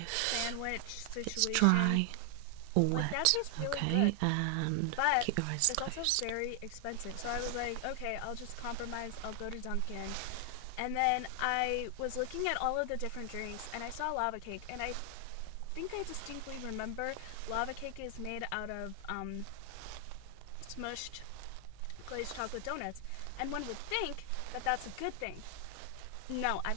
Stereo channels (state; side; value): different; both; correlation 0.00